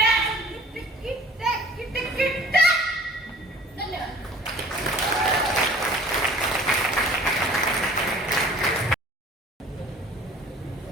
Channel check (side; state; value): both; normal; correlation 0.49